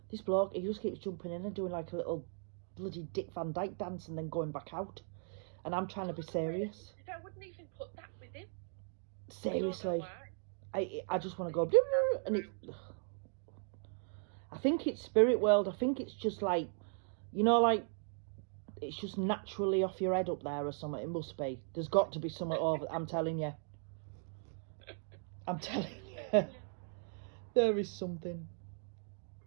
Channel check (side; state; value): left; silent; 53 dB below the other